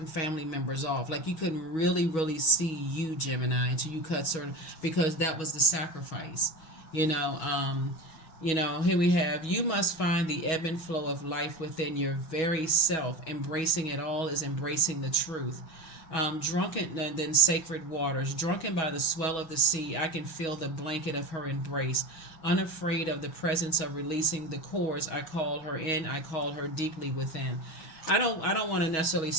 family members off. Like you couldn't really, really see you, Gemini, until you cut certain, because that was the sacrifice, here we have, you must find the ebb and flow of life within your very self. Embracing it all is embracing the truth. Drunken, and then sacred waters. Drunken by the swell of the sea, I can feel the blanket of her embrace. Unafraid of the presence of releasing the cords, I call her in. I call her deeply within. I don't want to necessarily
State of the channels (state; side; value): late; right; 6.2 ms